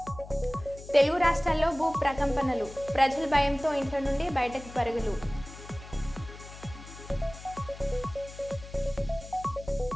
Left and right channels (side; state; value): left; noise; hum, 15 dB below the sound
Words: Telugu రాష్ట్రాల్లో భూ ప్రకంపనలు, ప్రజల భయంతో ఇంట్లో నుండి బయటకు పరుగులు.